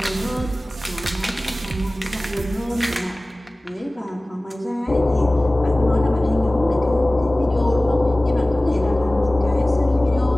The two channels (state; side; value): normal; both; correlation 0.98